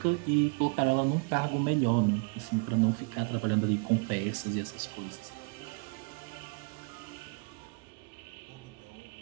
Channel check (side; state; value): left; quieter; 33.3 dB